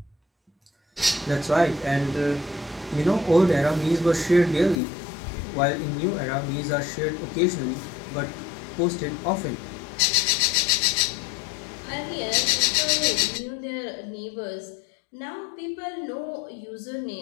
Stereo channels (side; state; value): right; drops out; at 4.8 s